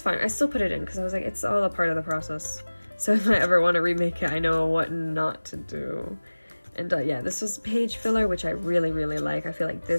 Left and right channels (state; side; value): inverted; both; correlation -1.00